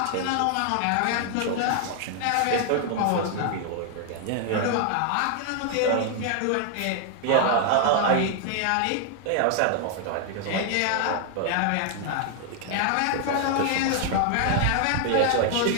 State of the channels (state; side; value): different; both; correlation 0.00